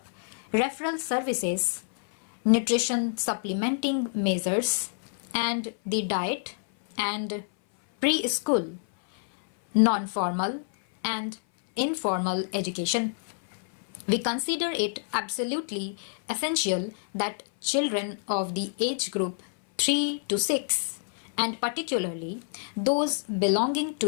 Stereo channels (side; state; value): right; silent; 58 dB below the other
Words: referral services, nutrition supplementing measures, and the diet and preschool, non-formal and informal education. We consider it absolutely essential that children of the age group 3 to 6, and particularly those belonging